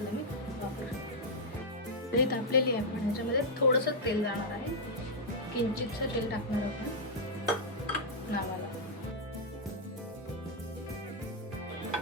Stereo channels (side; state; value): both; normal; correlation -0.05